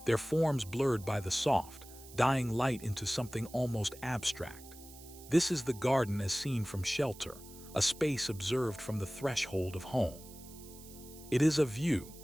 their forms blurred by the soft, dying light into something almost abstract. This is the garden as seen from shelter, a space observed from the threshold of home. It is a view,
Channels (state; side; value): noise; right; hiss, 19 dB below the sound